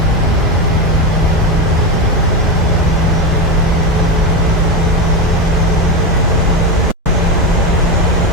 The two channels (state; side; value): normal; both; correlation 0.14